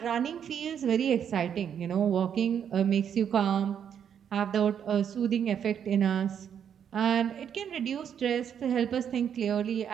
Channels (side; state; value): left; quieter; 8.4 dB